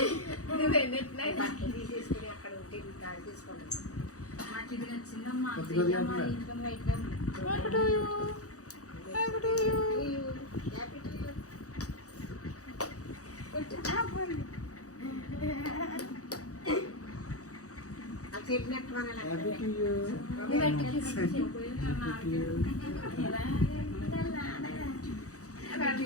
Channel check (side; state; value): right; late; 0.66 ms